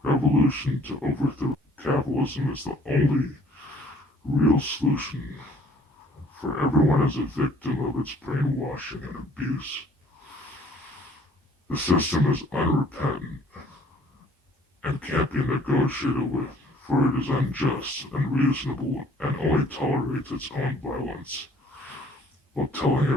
Revolution to overthrow capitalism is the only real solution, for everyone is a victim of its brainwashing and abuse. The system is unrepentant and can't be negotiated with, for it is unjust, unreasonable, and only tolerates its own violence, while telling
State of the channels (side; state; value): both; normal; correlation 0.56